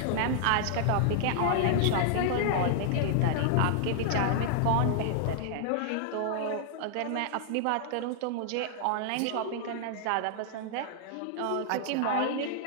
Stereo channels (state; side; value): different; both; correlation -0.01